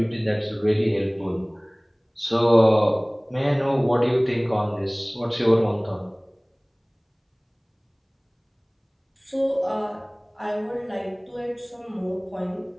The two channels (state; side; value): identical; both; correlation 1.00